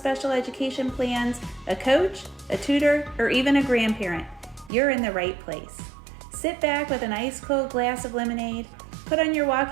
education plans, a coach, a tutor, or even a grandparent, you're in the right place. Sit back with an ice cold glass of lemonade, put on your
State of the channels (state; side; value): drops out; left; at 4.7 s